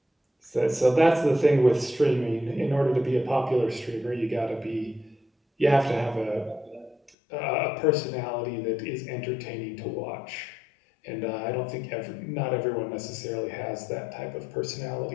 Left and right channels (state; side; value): drops out; right; at 7.1 s